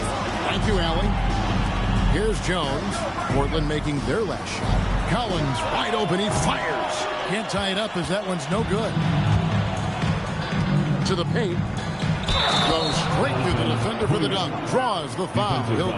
Thank you, Allie. Here's Jones. Portland making their last shot. Collins wide open. He fires. Can't tie it up as that one's no good. To the paint. Goes straight to the defender for the dunk. Draws the foul. He'll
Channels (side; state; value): both; identical; correlation 1.00